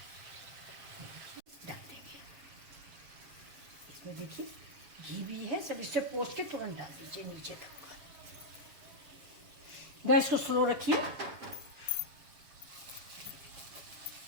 डाल देंगे इसमें, देखिए घी भी है, सब इससे पोंछ के तुरंत डाल दीजिए नीचे तक। गैस को स्लो रखिए।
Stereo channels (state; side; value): late; left; 7.4 ms